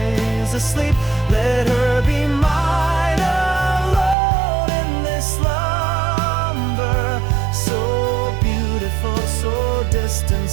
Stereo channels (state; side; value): drops out; left; at 4.2 s